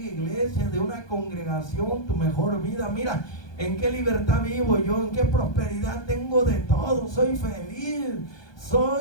de una congregación, tu mejor vida. Mira, en qué libertad vivo yo, en qué prosperidad tengo de todo. Soy feliz,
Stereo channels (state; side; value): late; right; 1.2 ms